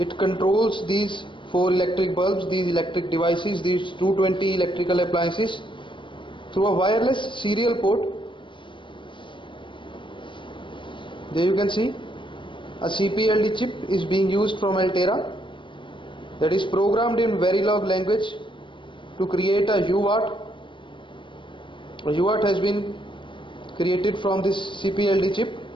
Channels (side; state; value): right; late; 0.24 ms